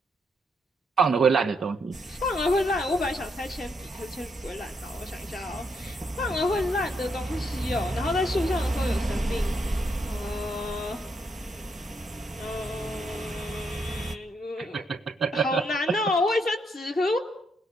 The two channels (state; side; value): normal; both; correlation 0.77